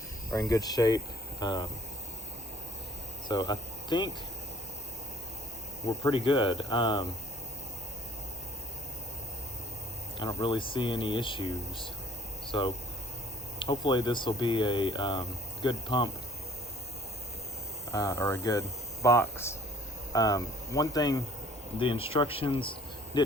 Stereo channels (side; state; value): both; normal; correlation 0.57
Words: are in good shape. So I think we're pretty good. I don't really see any issues. So hopefully this will be a good pump or a good box. One thing the instructions